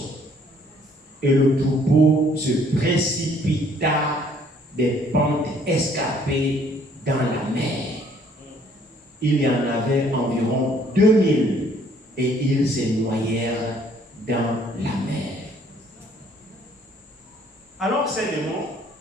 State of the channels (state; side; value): normal; both; correlation 0.61